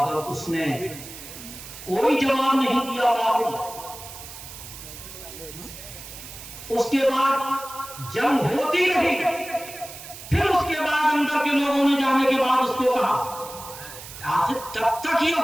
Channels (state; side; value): noise; right; hiss, 14 dB below the sound